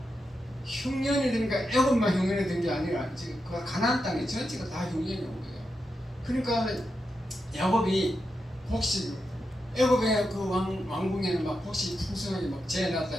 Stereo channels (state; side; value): normal; both; correlation 0.87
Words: 흉년이든가 애굽만 흉년이 된 게 아니라 지금 그 가나안 땅에 전체가 다 흉년이 온 거예요. 그러니까 야곱이 곡식 애굽의 그 왕궁에는 막 곡식 풍성하게 막 재놨다